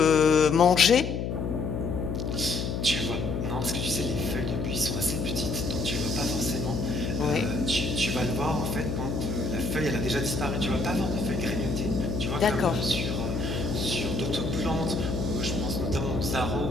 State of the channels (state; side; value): noise; left; hum, 2 dB below the sound